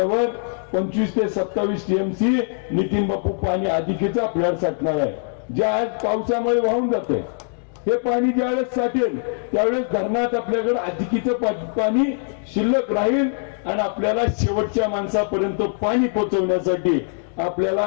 25 ते 27 टीएमसी नितीन बापू पाणी अधिकेचं आपल्याला साठणार आहे. जे आज पावसामुळे वाहून जाते हे पाणी ज्यावेळेस साठेल त्यावेळेस धरणात आपल्याकडे अधिकीचं पाणी शिल्लक राहील आणि आपल्याला शेवटच्या माणसापर्यंत पाणी पोहोचवण्यासाठी आपल्याला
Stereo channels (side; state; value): right; silent; digital silence